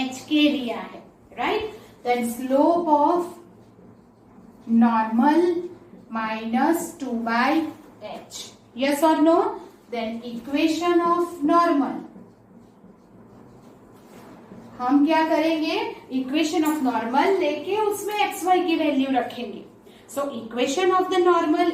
लिया है, right? Then slope of normal minus 2 by h. Yes or no? Then equation of normal, हम क्या करेंगे, equation of normal लेके उसमें एक्स वाई की वैल्यू रखेंगे. So equation of the normal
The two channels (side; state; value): both; identical; correlation 1.00